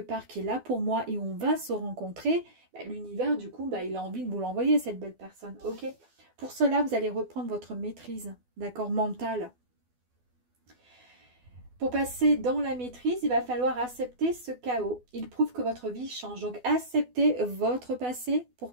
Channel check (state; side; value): late; left; 12 ms